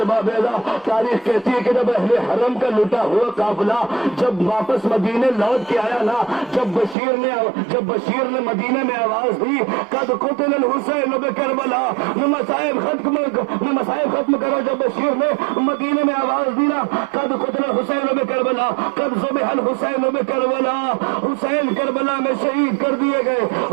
اعلیٰ, تاریخ کہتی ہے کہ جب اہل حرم کا لٹا ہوا قافلہ جب واپس مدینے لوٹ کے آیا نا, جب بشیر نے مدینے میں آواز دی, قد قتل الحسین بکربلا, مصائب ختم کرو. جب بشیر نے مدینے میں آواز دی نا, قد قتل الحسین بکربلا, قد ذبح الحسین بکربلا, حسین کربلا میں شہید کر دیے گئے,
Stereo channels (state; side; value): drops out; left; at 7.0 s